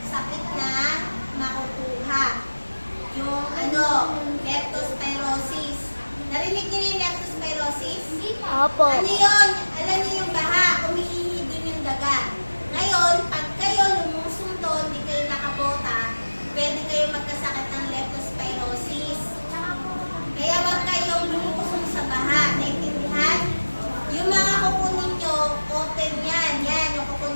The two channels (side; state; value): both; inverted; correlation -1.00